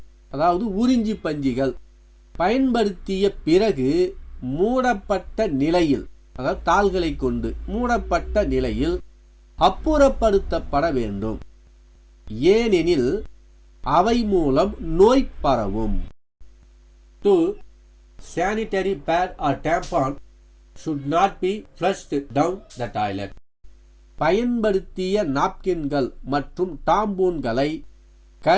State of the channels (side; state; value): both; identical; correlation 1.00